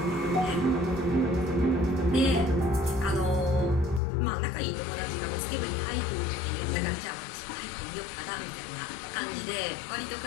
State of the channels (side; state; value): right; drops out; at 4.0 s